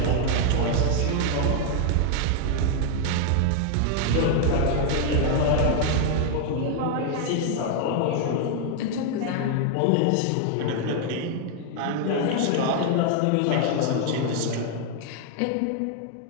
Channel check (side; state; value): both; different; correlation 0.00